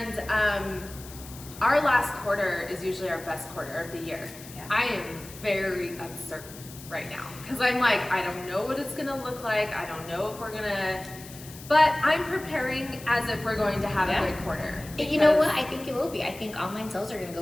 our last quarter is usually our best quarter of the year. Yeah. I am very uncertain right now because I'm like, I don't know what it's gonna look like. I don't know if we're gonna, but I'm preparing as if we're going to have Yeah. a good quarter. You know because- what? I think it will be. I think online sales are going to go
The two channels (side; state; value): left; noise; hiss, 16 dB below the sound